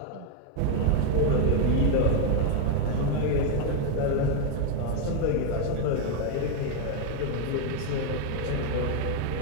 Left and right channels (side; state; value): both; different; correlation 0.01